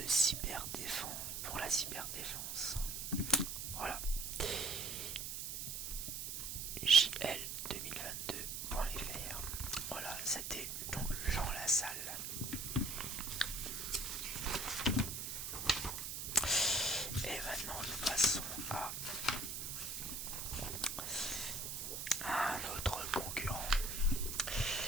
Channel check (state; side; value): noise; right; hiss, 4 dB below the sound